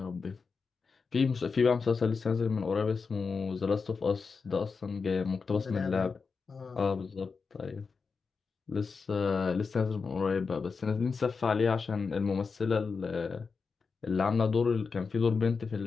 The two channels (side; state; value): right; quieter; 5.0 dB